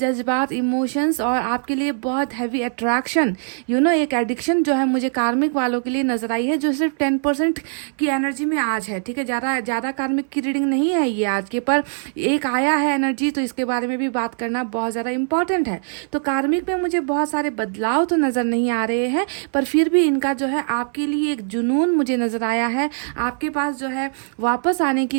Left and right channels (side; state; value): left; silent; 61 dB below the other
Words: इमोशंस और आपके लिए बहुत हैवी अट्रैक्शन, एक एडिक्शन जो है मुझे कार्मिक वालों के लिए नज़र आई है, जो सिर्फ 10% की एनर्जी में आज है, ठीक है। ज़्यादा कार्मिक की रीडिंग नहीं है ये आज के, पर एक आया है एनर्जी, तो इसके बारे में भी बात करना बहुत ज़्यादा इंपॉर्टेंट है। तो कार्मिक में मुझे बहुत सारे बदलाव तो नज़र नहीं आ रहे हैं, पर फिर भी इनका जो है आपके लिए एक जुनून मुझे नज़र आया है। आपके पास जो है वापस आने की